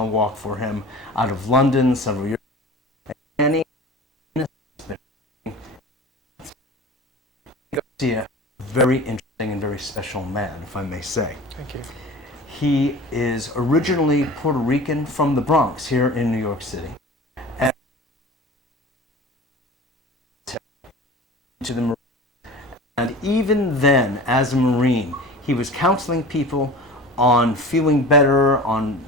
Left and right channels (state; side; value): normal; both; correlation 0.38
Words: walk for him out of London several years ago. Garcia, very interesting and very special man, if I may say. Thank you. He is originally Puerto Rican from the Bronx here in New York City. And to the Marine. And even then, as a Marine, he was counseling people on feeling better, on